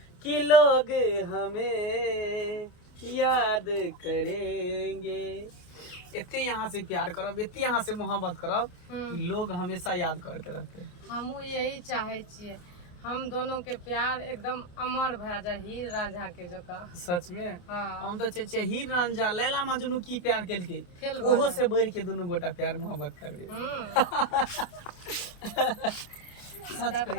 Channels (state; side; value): late; right; 28 ms